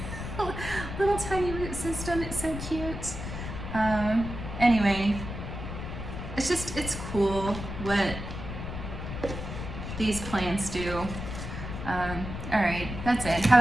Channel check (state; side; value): noise; left; rumble, 7 dB below the sound